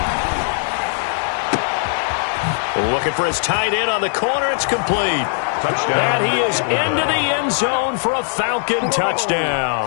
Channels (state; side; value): silent; right; digital silence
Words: Looking for his tight end on the corner. It's complete. Touchdown. And he is into the end zone for a Falcon